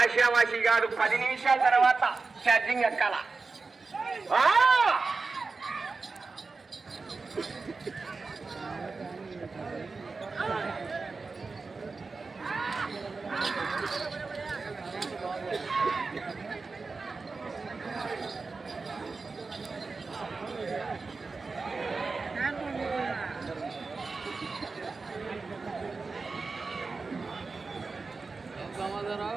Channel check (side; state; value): left; quieter; 4.1 dB